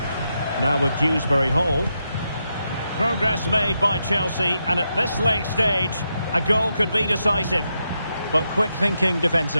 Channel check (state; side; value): inverted; both; correlation -0.84